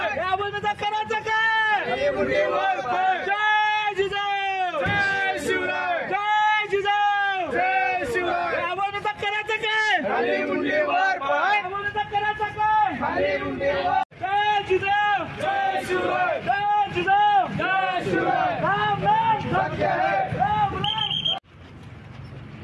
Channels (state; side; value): identical; both; correlation 1.00